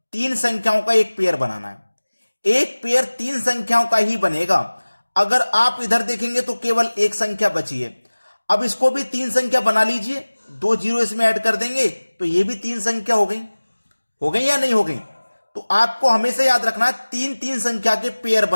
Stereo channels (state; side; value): inverted; both; correlation -1.00